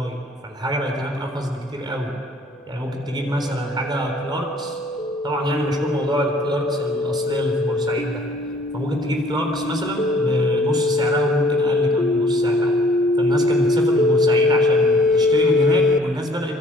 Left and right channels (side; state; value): both; normal; correlation 0.58